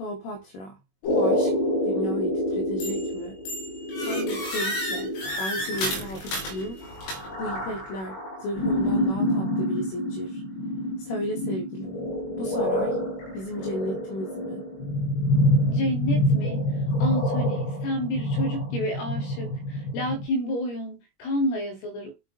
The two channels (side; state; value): right; late; 21 ms